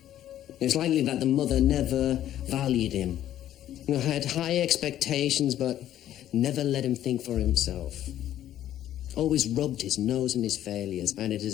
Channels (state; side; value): quieter; right; 12.1 dB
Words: It's likely that the mother never valued him. Had high expectations, but never let him think for himself. Always rubbed his nose in his failures, and it